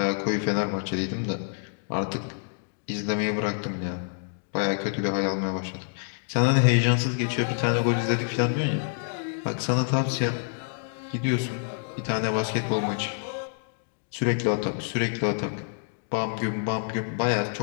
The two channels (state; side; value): silent; right; digital silence